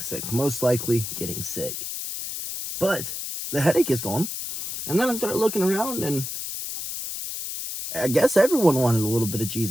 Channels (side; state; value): left; noise; hiss, 6 dB below the sound